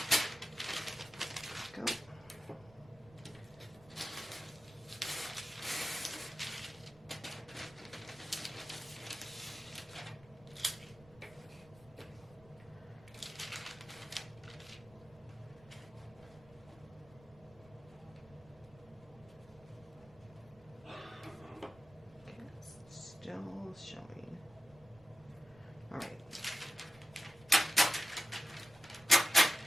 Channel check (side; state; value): right; noise; rumble, 24 dB below the sound